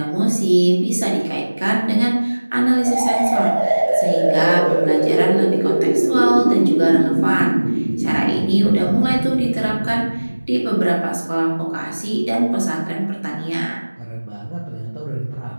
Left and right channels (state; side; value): inverted; both; correlation -1.00